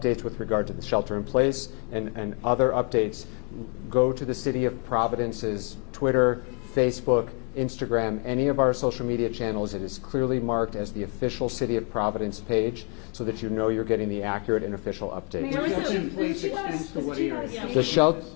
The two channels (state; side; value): quieter; right; 35.0 dB